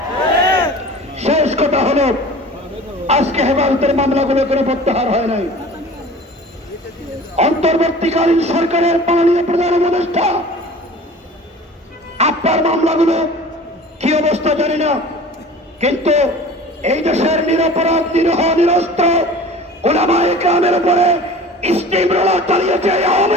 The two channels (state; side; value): normal; both; correlation 0.41